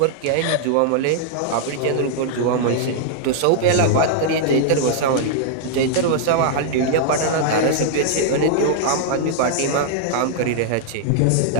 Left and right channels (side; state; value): both; different; correlation -0.01